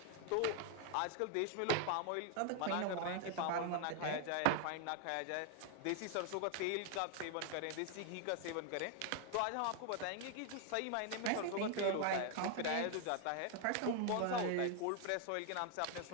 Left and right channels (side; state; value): both; different; correlation 0.00